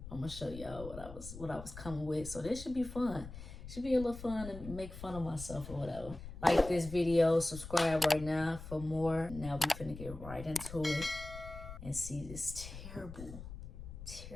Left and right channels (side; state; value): left; noise; rumble, 12 dB below the sound